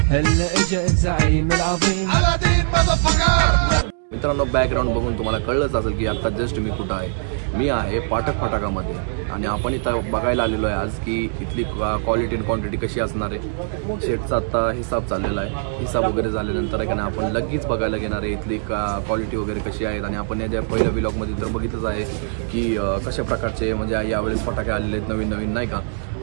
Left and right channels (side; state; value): left; silent; digital silence